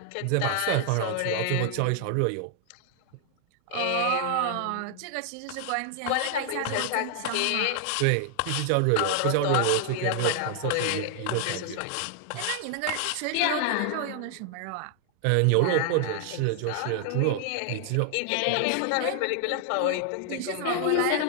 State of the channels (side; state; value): both; different; correlation 0.00